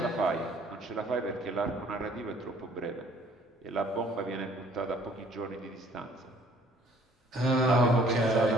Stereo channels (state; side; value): normal; both; correlation 0.57